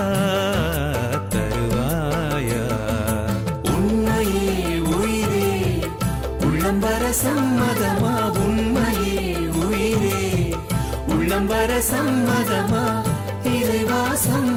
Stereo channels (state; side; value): identical; both; correlation 1.00